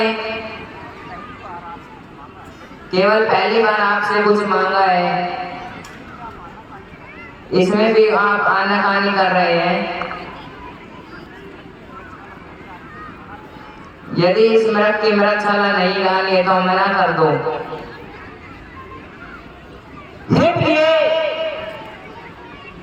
केवल पहली बार आपसे कुछ मांगा है, इसमें भी आप आनाकानी कर रहे हैं। यदि इस मृग की मृगशाला नहीं डाली है तो मना कर दो। हे प्रिय,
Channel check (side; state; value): both; identical; correlation 1.00